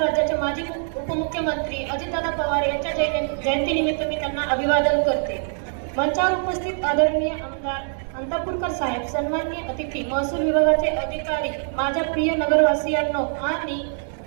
राज्याचे माजी उपमुख्यमंत्री अजितदादा पवार यांच्या जयंतीनिमित्त मी त्यांना अभिवादन करते. मंचावर उपस्थित आदरणीय आमदार अंतापूरकर साहेब, सन्माननीय अतिथी, महसूल विभागाचे अधिकारी, माझ्या प्रिय नगरवासियांनो आणि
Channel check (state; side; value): silent; left; digital silence